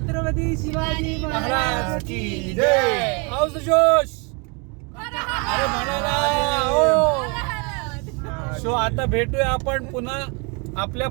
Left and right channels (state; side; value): quieter; left; 31.7 dB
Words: शिवाजी महाराज की जय. हाऊस द जोश. अरे म्हणाला हो. सो आता भेटूया आपण पुन्हा आपल्या